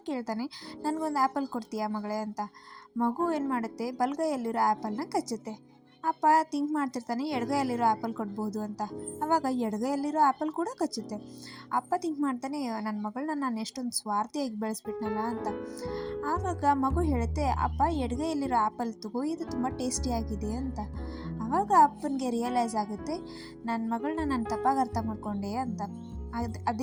ಕೇಳ್ತಾನೆ, ನನಗೊಂದು ಆ್ಯಪಲ್ ಕೊಡ್ತೀಯಾ ಮಗಳೇ ಅಂತ. ಮಗು ಏನು ಮಾಡುತ್ತೆ, ಬಲಗೈಯಲ್ಲಿರೋ ಆ್ಯಪಲ್ನ ಕಚ್ಚುತ್ತೆ. ಅಪ್ಪ ಥಿಂಕ್ ಮಾಡ್ತಿರ್ತಾನೆ, ಎಡಗೈಯಲ್ಲಿರೋ ಆ್ಯಪಲ್ ಕೊಡ್ಬೋದು ಅಂತ. ಆವಾಗ ಎಡಗೈಯಲ್ಲಿರೋ ಆ್ಯಪಲ್ ಕೂಡ ಕಚ್ಚುತ್ತೆ. ಅಪ್ಪ ಥಿಂಕ್ ಮಾಡ್ತಾನೆ, ನನ್ನ ಮಗಳನ್ನ ನಾನು ಎಷ್ಟೊಂದು ಸ್ವಾರ್ಥಿಯಾಗಿ ಬೆಳೆಸ್ಬಿಟ್ನಲ್ಲ ಅಂತ. ಆವಾಗ ಮಗು ಹೇಳುತ್ತೆ, ಅಪ್ಪ ಎಡಗೈಯಲ್ಲಿರೋ ಆ್ಯಪಲ್ ತಗೋ, ಇದು ತುಂಬ ಟೇಸ್ಟಿಯಾಗಿದೆ ಅಂತ. ಆವಾಗ ಅಪ್ಪನಿಗೆ ರಿಯಲೈಸ್ ಆಗುತ್ತೆ, ನನ್ನ ಮಗಳನ್ನ ನಾನು ತಪ್ಪಾಗಿ ಅರ್ಥ ಮಾಡ್ಕೊಂಡೆ ಅಂತ.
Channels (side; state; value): both; identical; correlation 1.00